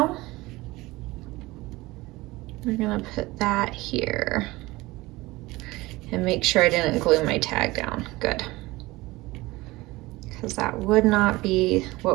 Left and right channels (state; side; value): quieter; left; 20.5 dB